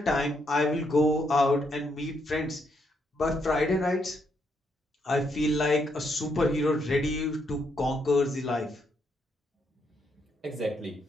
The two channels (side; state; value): both; normal; correlation 0.76